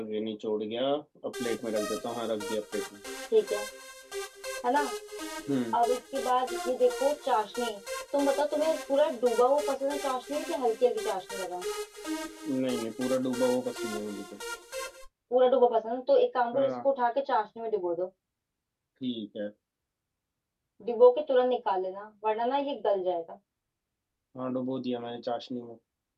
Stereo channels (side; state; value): both; identical; correlation 1.00